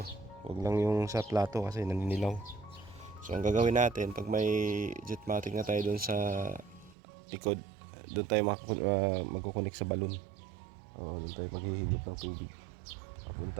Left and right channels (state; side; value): drops out; left; at 7.0 s